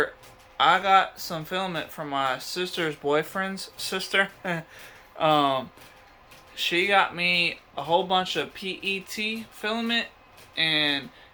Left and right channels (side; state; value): both; identical; correlation 1.00